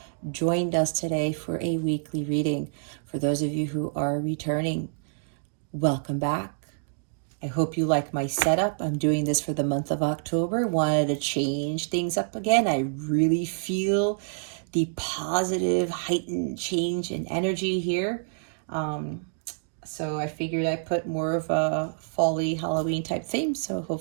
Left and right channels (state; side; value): silent; left; digital silence